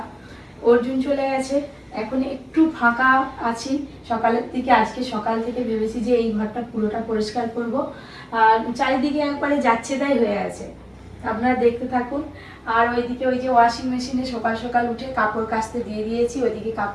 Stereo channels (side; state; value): both; identical; correlation 1.00